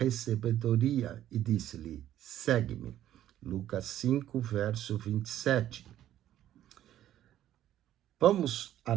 e disse-lhe: Segue-me. Lucas 5, verso 27. Vamos à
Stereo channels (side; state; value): left; quieter; 12.2 dB